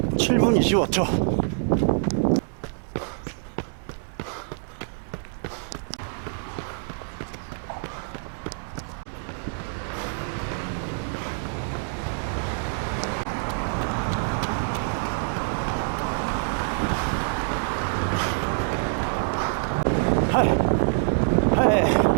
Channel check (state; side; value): silent; left; digital silence